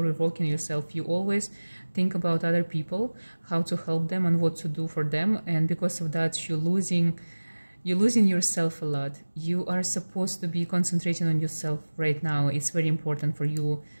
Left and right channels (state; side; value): inverted; both; correlation -1.00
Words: yourself. You always think about other people, how to help them and what to do for them, and because of that you're losing yourself a lot. You are supposed to be concentrating on yourself right now. It's very important for you,